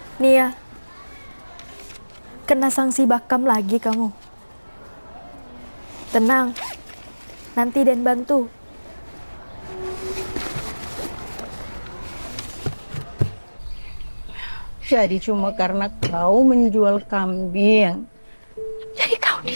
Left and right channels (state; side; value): inverted; both; correlation -1.00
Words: Nia, kena sanksi bakam lagi kamu. Tenang, nanti Den bantu. Jadi cuma karena kau menjual kambing, jadi kau